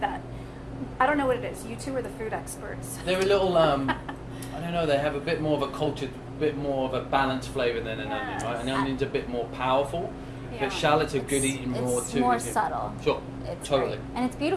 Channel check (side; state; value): both; identical; correlation 1.00